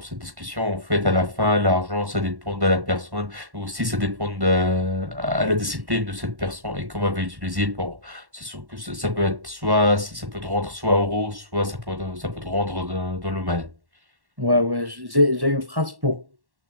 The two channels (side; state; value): left; late; 1.1 ms